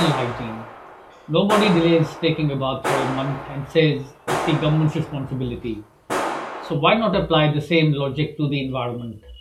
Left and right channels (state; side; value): identical; both; correlation 1.00